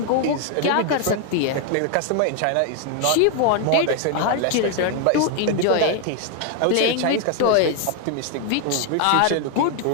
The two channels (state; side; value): different; both; correlation 0.01